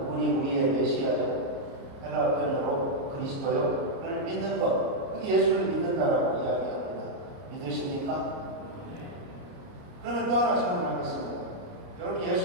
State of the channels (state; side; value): late; left; 29 ms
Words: 우리의 메시아요, 헬라 표현으로 그리스도요를 믿는 것, 그게 예수를 믿는다라고 이야기합니다. 믿으십니까? 그러면 또 하나 질문하겠습니다. 여러분